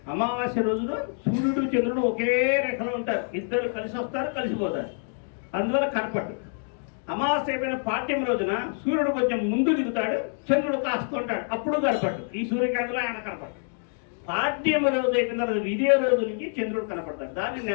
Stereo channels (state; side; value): silent; right; 58 dB below the other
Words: అమావాస్య రోజున సూర్యుడు చంద్రుడు ఒకే రేఖలో ఉంటారు, ఇద్దరు కలిసి వస్తారు కలిసిపోతారు, అందువల్ల కనపట్టు. అమావాస్య అయిపోయిన పాడ్యమి రోజున సూర్యుడు కొంచెం ముందు దిగుతాడు, చంద్రుడు కాస్తుంటాడు, అప్పుడు కనపట్టు. ఈ సూర్యకాంతిలో ఆయన కనపట్టు. పాడ్యమి రోజు అయిపోయిన తర్వాత విజయ రోజు నుంచి చంద్రుడు కనపడతాడు, దాన్ని